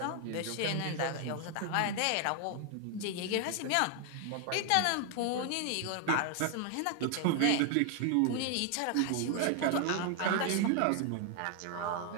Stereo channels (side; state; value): both; different; correlation 0.00